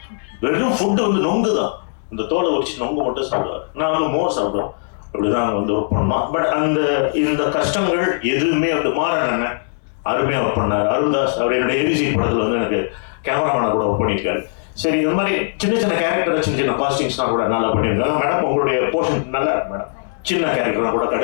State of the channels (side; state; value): right; silent; digital silence